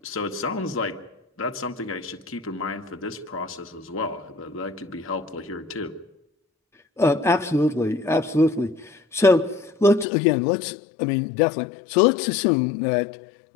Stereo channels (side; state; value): right; drops out; at 10.1 s